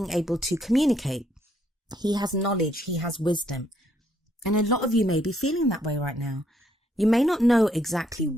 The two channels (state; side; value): normal; both; correlation 0.71